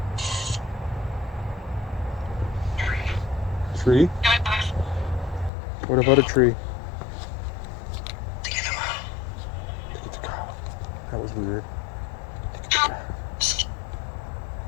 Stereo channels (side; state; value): right; drops out; at 5.5 s